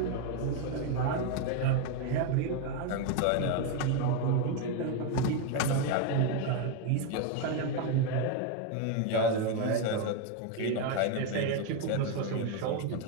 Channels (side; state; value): both; different; correlation 0.01